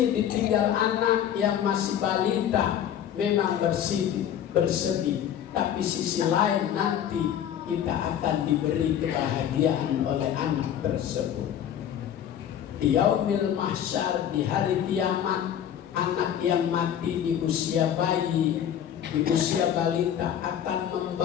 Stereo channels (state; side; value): quieter; right; 9.8 dB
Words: ditinggal anak yang masih balita, memang bersedih. Tapi sisi lain nanti kita akan diberi kebahagiaan oleh anak tersebut. Di yaumil mahsyar, di hari kiamat, anak yang mati di usia bayi, di usia balita akan